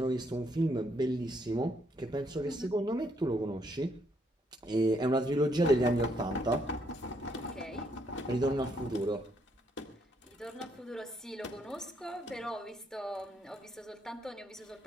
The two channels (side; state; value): both; normal; correlation 0.73